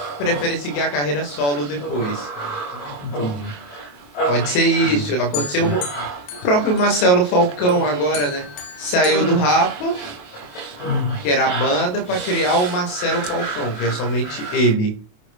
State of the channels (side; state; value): right; late; 28 ms